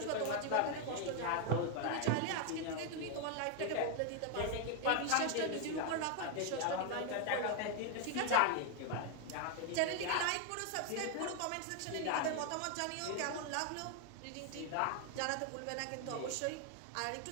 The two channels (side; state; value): both; different; correlation 0.01